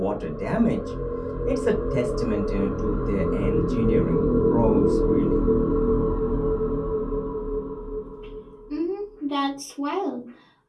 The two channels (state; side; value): identical; both; correlation 1.00